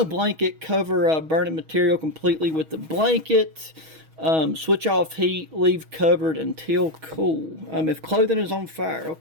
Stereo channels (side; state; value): left; late; 6.3 ms